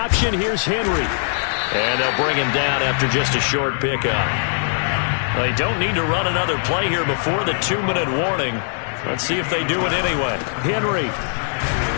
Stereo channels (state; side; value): silent; right; 64 dB below the other